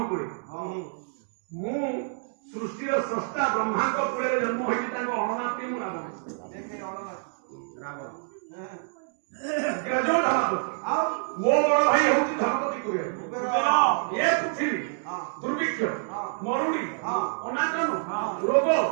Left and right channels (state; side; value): silent; left; digital silence